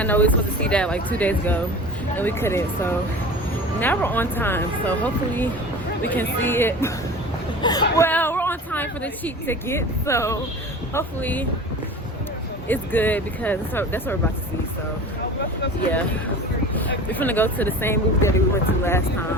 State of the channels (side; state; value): both; normal; correlation 0.37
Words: know we were supposed to see that like 2 days ago and we couldn't. So now we're on time. So hopefully we can see it. Well, we're on time for the cheap ticket, so hopefully it's good because that's what we're about to see. So yeah, we're gonna go to the same movie that we went to last